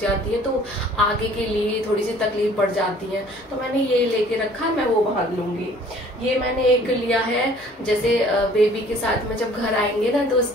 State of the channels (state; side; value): normal; both; correlation 0.54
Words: है तो आगे के लिए थोड़ी सी तकलीफ पड़ जाती है, तो मैंने ये लेके रखा, मैं वो बांध लूंगी। ये मैंने एक लिया है, जैसे बेबी के साथ में जब घर आएंगे ना तो